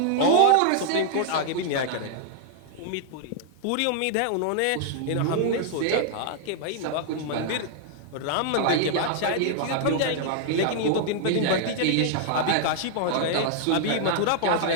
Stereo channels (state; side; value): different; both; correlation -0.01